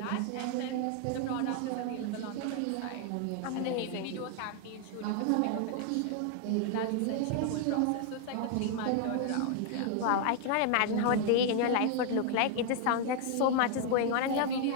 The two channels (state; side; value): different; both; correlation 0.00